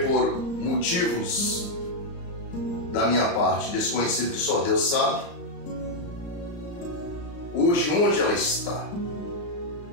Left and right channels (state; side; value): late; right; 35 ms